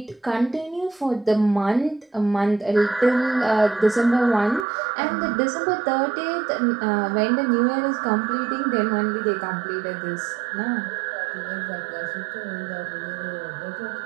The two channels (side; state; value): left; drops out; at 4.7 s